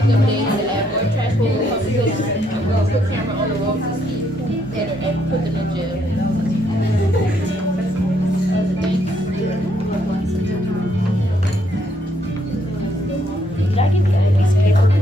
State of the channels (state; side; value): normal; both; correlation 0.72